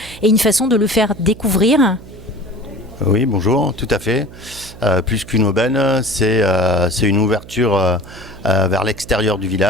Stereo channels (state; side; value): noise; right; hum, 18 dB below the sound